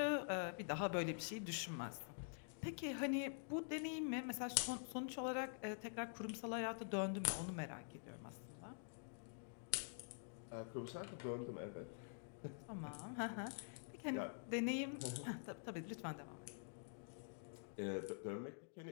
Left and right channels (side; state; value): right; silent; digital silence